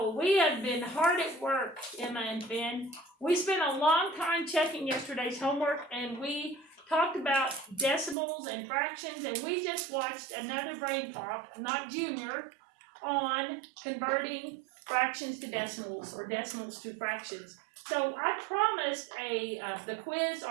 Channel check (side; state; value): left; drops out; at 8.2 s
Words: we have been hard at work, Emma and Finn. We spent a long time checking yesterday's homework, and we talked about decimals and fractions, and we just watched another brain pop, not Junior, on converting fractions to decimals or decimals to fractions. So I promised the quiz